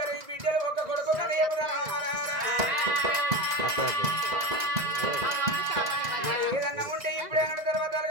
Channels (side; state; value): left; late; 2.0 ms